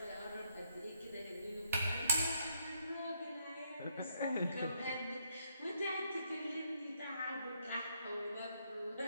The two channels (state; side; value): inverted; both; correlation -0.73